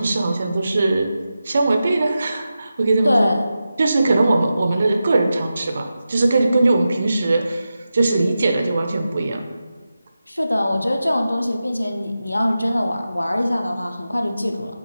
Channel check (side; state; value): both; inverted; correlation -0.92